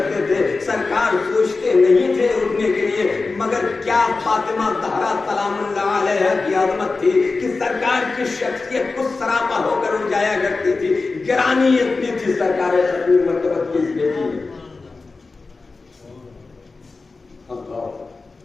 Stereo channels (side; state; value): right; quieter; 3.9 dB